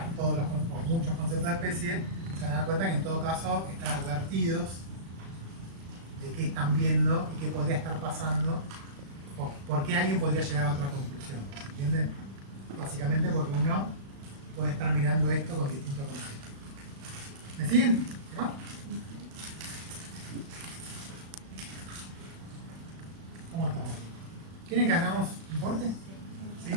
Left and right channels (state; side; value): late; left; 36 ms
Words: todos o muchos conceptos de especie, se van a dar cuenta que en todo caso están advertidos de qué están viendo y qué podría estar pasando, o por qué alguien podría llegar a otra conclusión. ¿Entienden? Básicamente porque uno puede estar mirando esto con distintos conceptos. ¿Me siguen? ¿Qué va? ¿Cómo estamos? ¿Quieren que hagamos un corte? ¿Sí?